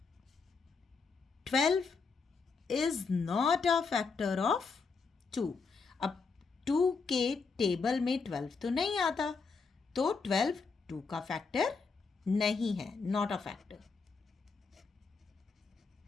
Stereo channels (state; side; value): quieter; right; 4.8 dB